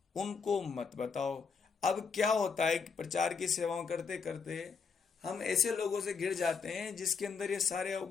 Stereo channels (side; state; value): right; quieter; 5.5 dB